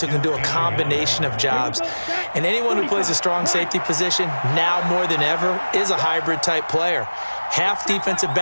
who can do a combination of jobs. And anyone who plays a strong safety position, now more than ever, is a hybrid type player. Half defensive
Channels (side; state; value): both; inverted; correlation -1.00